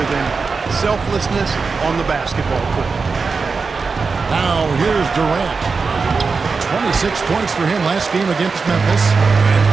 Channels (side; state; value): left; quieter; 4.7 dB